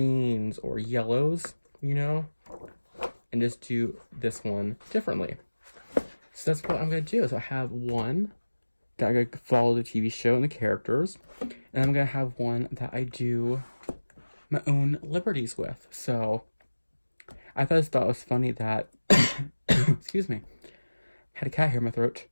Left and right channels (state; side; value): inverted; both; correlation -1.00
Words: or yellows, and just do this one differently. So that's what I'm going to do. So I have one that I'm going to follow the TV show and the characters, and I'm going to have one that I do my own liberties with. So I thought it was funny that, excuse me, I had a cat here in my throat.